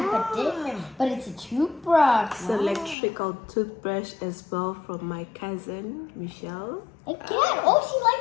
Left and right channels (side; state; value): right; drops out; at 3.0 s